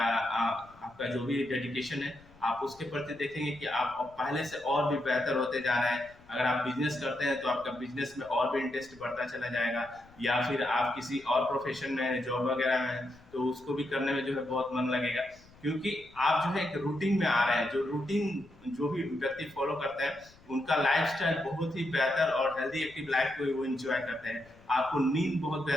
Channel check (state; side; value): noise; left; rumble, 25 dB below the sound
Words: आपका जो भी डेडिकेशन है, आप उसके प्रति देखेंगे कि आप पहले से और भी बेहतर होते जा रहे हैं। अगर आप बिजनेस करते हैं तो आपका बिजनेस में और भी इंटरेस्ट बढ़ता चला जाएगा, या फिर आप किसी और प्रोफेशन में जॉब वगैरह में तो उसको भी करने में जो है बहुत मन लगेगा, क्योंकि आप जो है एक रूटीन में आ रहे हैं। जो रूटीन जो भी व्यक्ति फॉलो करते हैं उनका लाइफस्टाइल बहुत ही बेहतर और हेल्दी एक्टिव लाइफ को वो एंजॉय करते हैं। आपको नींद बहुत